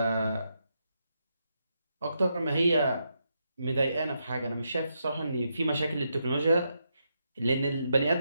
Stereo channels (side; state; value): both; inverted; correlation -0.82